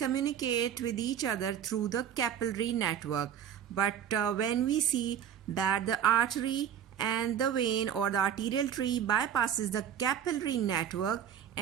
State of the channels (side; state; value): left; quieter; 9.3 dB